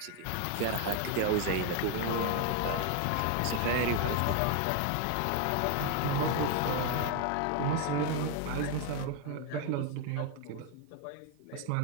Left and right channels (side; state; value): both; different; correlation 0.01